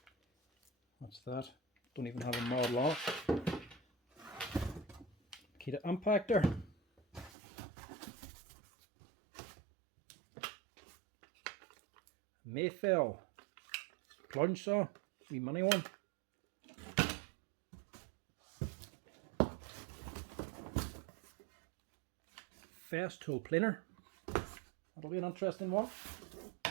What's that? Don't even have a model on it. Makita impactor. Mafell plunge saw, wee mini one. Festools planer. That'll be an interesting one.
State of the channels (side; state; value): left; drops out; at 7.3 s